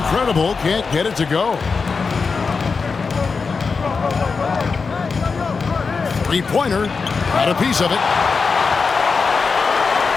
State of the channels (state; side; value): quieter; right; 4.9 dB